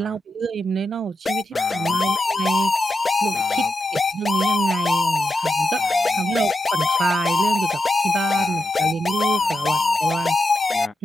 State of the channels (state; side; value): normal; both; correlation 0.88